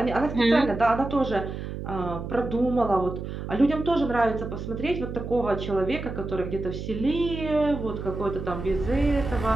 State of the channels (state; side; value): noise; right; hum, 7 dB below the sound